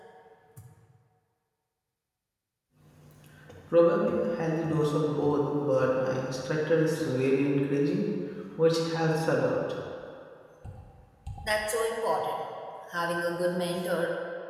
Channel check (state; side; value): identical; both; correlation 1.00